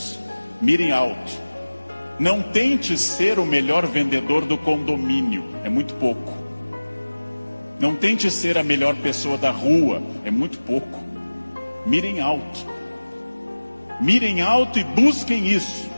Mire alto. Não tente ser o melhor vendedor do condomínio, é muito pouco. Não tente ser a melhor pessoa da rua, é muito pouco. Mirem alto. Mirem alto e busquem isso.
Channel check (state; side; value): inverted; both; correlation -1.00